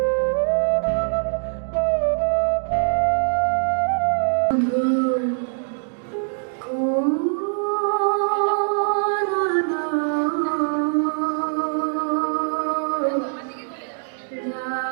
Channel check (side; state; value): left; silent; digital silence